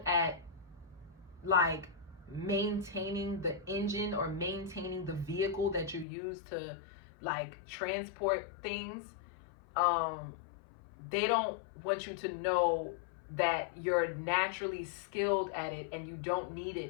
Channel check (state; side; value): drops out; right; at 6.1 s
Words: at like maintaining the engine, or maintaining the vehicle that you use to like transport things. They don't want you to know that you're naturally skilled at it and you don't